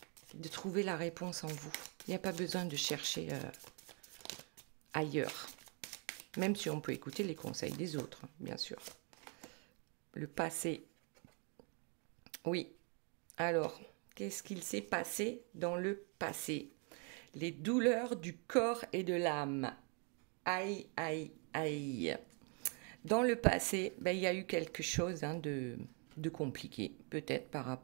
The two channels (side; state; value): left; quieter; 36.7 dB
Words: trouver la réponse en vous. Il n'y a pas besoin de chercher ailleurs. Même si on peut écouter les conseils des autres, bien sûr. Le passé. Oui. Alors, qu'est-ce qu'il s'est passé dans le passé? Les douleurs du corps et de l'âme. Aïe, aïe, aïe. Dans le passé, il y a eu quelque chose de compliqué, peut-être par